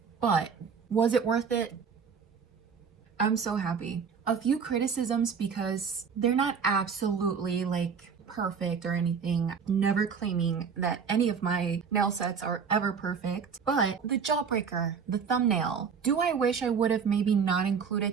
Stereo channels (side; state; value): left; quieter; 6.3 dB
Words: But was it worth it? I'm so happy. A few criticisms because they're not absolutely like perfect or anything. Never claiming that any of my nail sets are ever perfect. But the Jawbreaker, the thumbnail, do I wish I would have maybe not